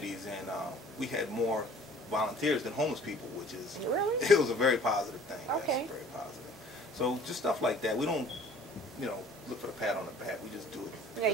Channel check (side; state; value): both; normal; correlation 0.51